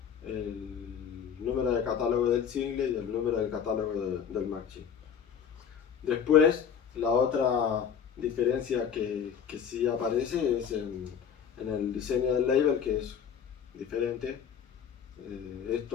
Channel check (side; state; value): right; quieter; 7.7 dB